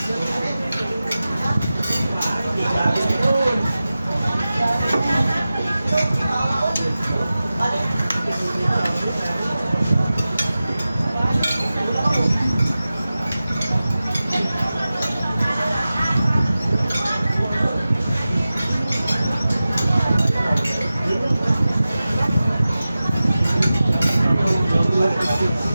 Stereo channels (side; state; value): both; inverted; correlation -0.95